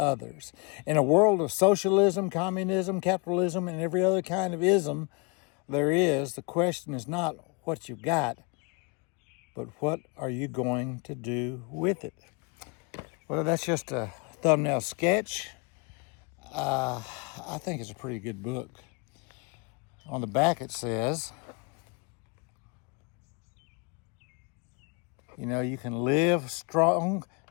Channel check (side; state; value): right; quieter; 32.5 dB